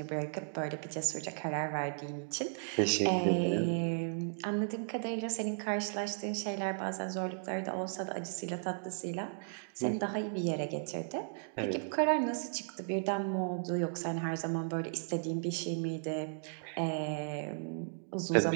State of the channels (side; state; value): left; silent; digital silence